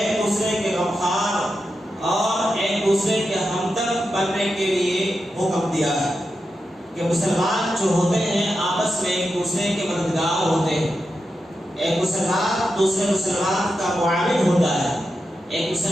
دوسرے کے غمخوار اور ایک دوسرے کے ہمدرد بننے کے لیے حکم دیا ہے کہ مسلمان جو ہوتے ہیں آپس میں ایک دوسرے کے مددگار ہوتے ہیں. ایک مسلمان دوسرے مسلمان کا معاون ہوتا ہے، ایک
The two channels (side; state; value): both; normal; correlation 0.88